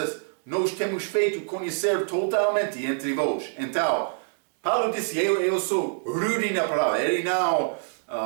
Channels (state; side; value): silent; left; digital silence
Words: nós temos feito conhecer totalmente entre vós. Então, Paulo disse, eu sou rude na palavra. Ele não